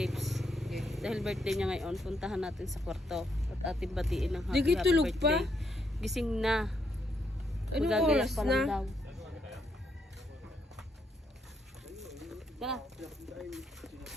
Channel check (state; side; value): normal; both; correlation 0.77